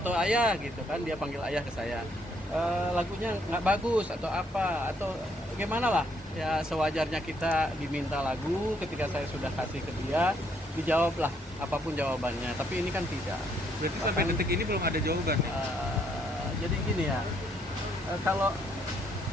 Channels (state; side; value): normal; both; correlation 0.70